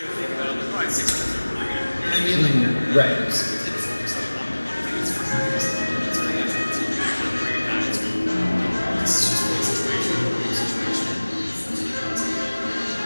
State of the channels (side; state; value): both; inverted; correlation -1.00